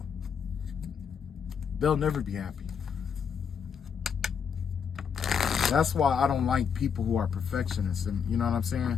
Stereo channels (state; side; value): quieter; right; 6.9 dB